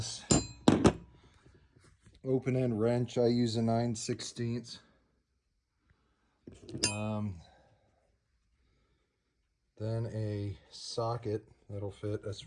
open end wrench. I use a 9/16. Then a socket that'll fit. That's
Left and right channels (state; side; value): identical; both; correlation 1.00